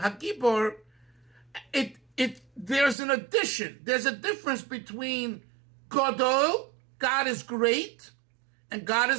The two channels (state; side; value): drops out; left; at 3.0 s